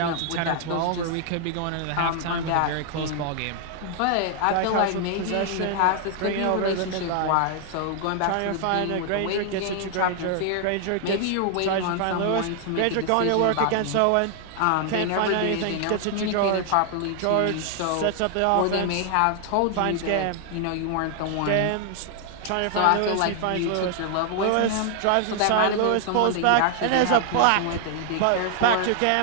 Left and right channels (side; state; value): both; different; correlation 0.00